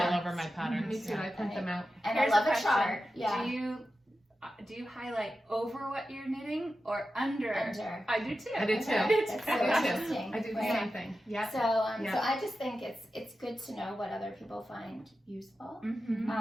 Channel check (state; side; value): normal; both; correlation 0.92